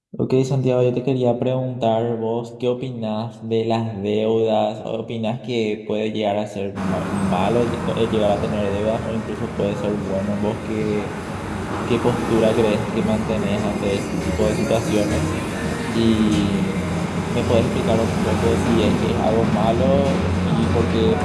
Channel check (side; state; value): both; identical; correlation 1.00